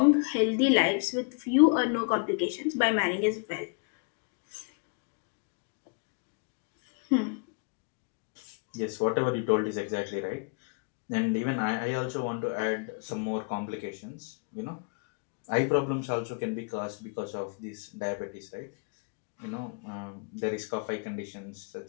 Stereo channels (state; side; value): quieter; right; 35.1 dB